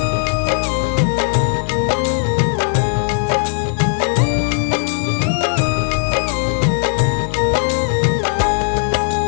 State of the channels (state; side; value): silent; right; digital silence